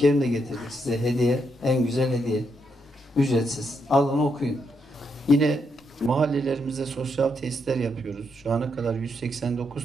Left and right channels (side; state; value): both; normal; correlation 0.79